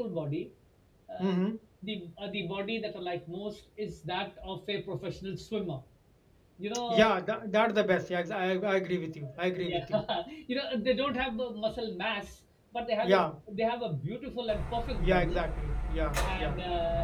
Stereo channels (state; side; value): identical; both; correlation 1.00